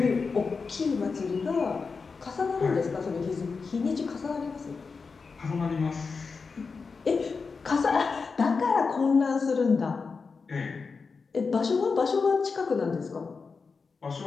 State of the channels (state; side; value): quieter; right; 4.8 dB